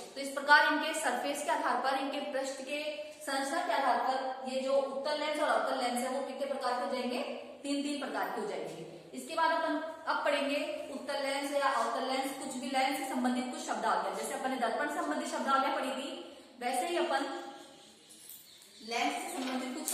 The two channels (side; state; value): both; identical; correlation 1.00